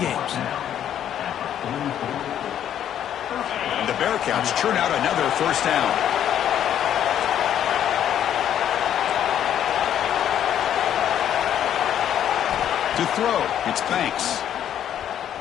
And the Bearcats churn out another first down. To throw, it's Banks.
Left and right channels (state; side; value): quieter; right; 10.2 dB